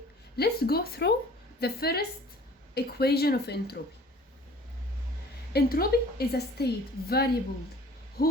let's go through the first equation of entropy. Entropy is a state variable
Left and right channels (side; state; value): both; normal; correlation 0.49